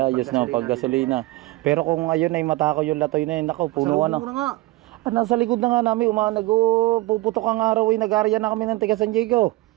ayos na paggasolina. Pero kung ayun ay matakaw yung latoy na yun, nako, punuan na. nga. Nasa likod na nga namin, puputok ang araw ay nag-area na kami ng taga San Diego.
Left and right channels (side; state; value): left; quieter; 19.9 dB